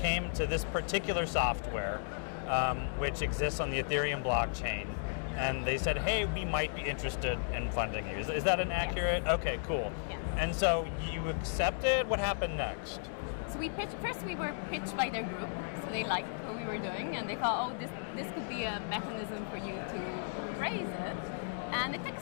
to this particular software which exists on the Ethereum blockchain. And they said, hey, we might be interested in funding you. Is that an accurate? Yes. Okay, cool. Yes. And so you accepted. What happened next? So we pitched, first we were pitched by their group, so they liked what we were doing, and they thought, oh, this could be a mechanism for you to raise it. And it took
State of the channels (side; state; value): right; silent; digital silence